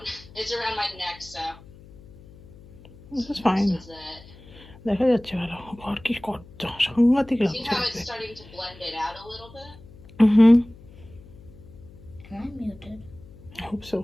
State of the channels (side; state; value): left; noise; hum, 21 dB below the sound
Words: It's around my neck, so. This is fine. This is it. দেখা যাচ্ছে ভালো ঘর কি কত সাংঘাতিক See লাগছে how it's starting to blend it out a little bit? Am I muted? I hope so.